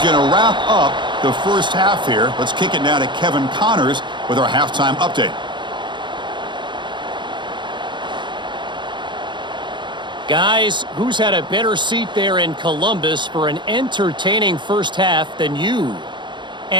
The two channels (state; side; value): late; left; 0.23 ms